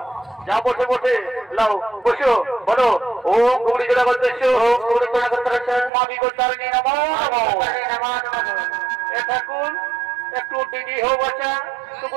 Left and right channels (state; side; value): drops out; left; at 5.9 s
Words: যা বটে বটে লাও বসো। বলো ও খুকড়ি ছোড়া করতেছ, ও খুকড়ি ছোড়া করতে মাবি গোত্রানি নমো নমো নমো নমো। এ ঠাকুর একটু দিদি হো বাচ্চা তোকে